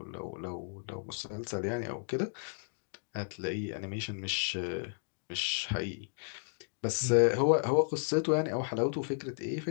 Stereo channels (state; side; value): silent; right; digital silence